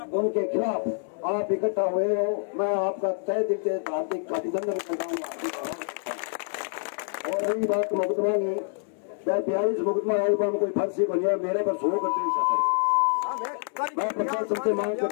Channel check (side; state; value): right; silent; 60 dB below the other